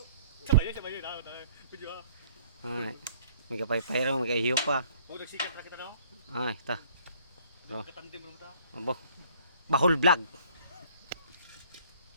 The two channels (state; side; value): inverted; both; correlation -0.57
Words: Sabay yun. Pwede ba? Ay, may kapay-pay raw, may kahiyo pa. Huwag nagsikat na kita no? Ay, ta. Bro, Katandim mo ta. abo. Bahol vlog.